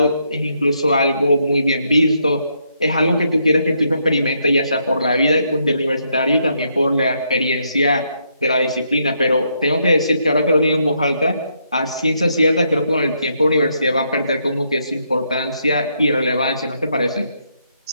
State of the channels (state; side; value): inverted; both; correlation -0.76